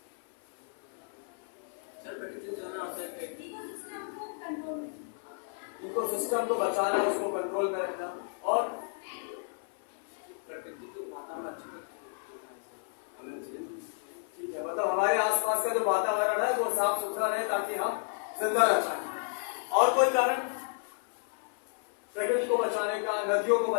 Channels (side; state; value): right; silent; 56 dB below the other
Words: इकोसिस्टम को बचाना, उसको कंट्रोल में रखना, और प्रकृति को वातावरण अच्छा रखना, ठीक है। मतलब हमारे आसपास का जो वातावरण है वो साफ सुथरा रहे ताकि हम जिंदा रह पाए। और कोई कारण? प्रकृति को बचाने का, नदियों को